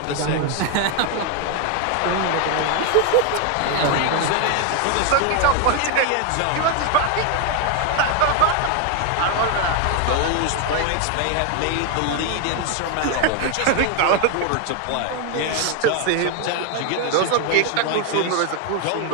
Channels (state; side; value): different; both; correlation 0.01